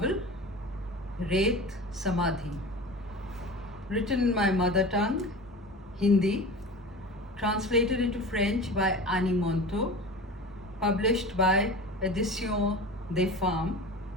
Ret Samadhi, written in my mother tongue, Hindi, translated into French by Annie Monto, published by Éditions des Femmes.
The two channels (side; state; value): both; normal; correlation 0.33